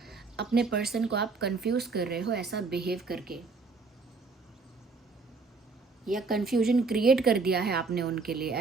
को आप कंफ्यूज कर रहे हो ऐसा बिहेव करके, या कंफ्यूजन क्रिएट कर दिया है आपने उनके लिए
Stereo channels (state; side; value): quieter; left; 4.2 dB